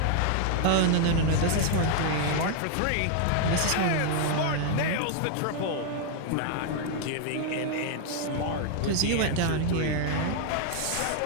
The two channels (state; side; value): different; both; correlation 0.00